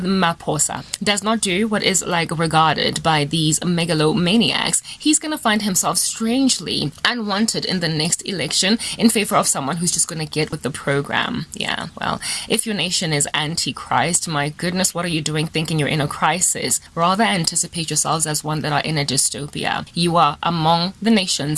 does not do what is like regarded by these megalomaniacs, he's going to find himself strangely unwanted in the next election in favor of someone who's just going to get with the program. Yeah, well, if your nation is antichrist, my goodness, what are you doing thinking you're in a crisis? Rather anticipate yourselves as one that are in a dystopia. You are among the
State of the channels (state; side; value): identical; both; correlation 1.00